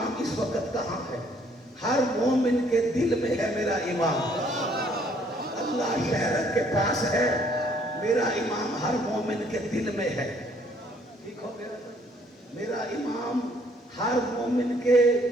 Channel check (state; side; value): normal; both; correlation 0.63